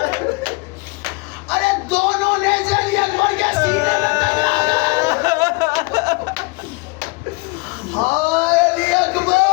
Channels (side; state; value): right; quieter; 26.6 dB